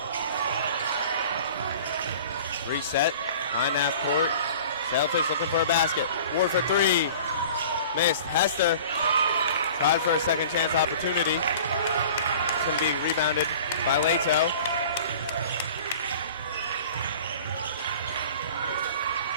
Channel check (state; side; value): inverted; both; correlation -0.44